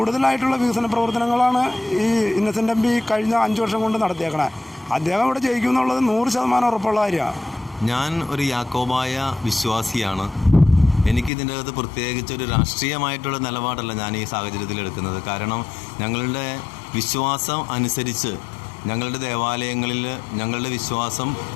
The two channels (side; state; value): right; drops out; at 11.3 s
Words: വികസന പ്രവർത്തനങ്ങളാണ് ഈ ഇന്നസെൻ്റ് MP കഴിഞ്ഞ 5 വർഷം കൊണ്ട് നടത്തിയേക്കണേ. അദ്ദേഹം ഇവിടെ ജയിക്കുമെന്നുള്ളത് 100% ഉറപ്പുള്ള കാര്യമാണ്. ഞാൻ ഒരു യാക്കോബായ വിശ്വാസിയാണ്. എനിക്കിതിൻ്റെ അകത്ത് പ്രത്യേകിച്ചൊരു രാഷ്ട്രീയമായിട്ടുള്ള നിലപാടല്ല ഞാൻ ഈ സാഹചര്യത്തിൽ എടുക്കുന്നത്. കാരണം ഞങ്ങളുടെ വിശ്വാസം അനുസരിച്ച് ഞങ്ങളുടെ ദേവാലയങ്ങളിൽ ഞങ്ങളുടെ വിശ്വാസം